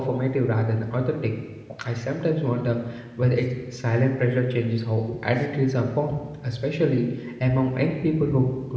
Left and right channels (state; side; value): identical; both; correlation 1.00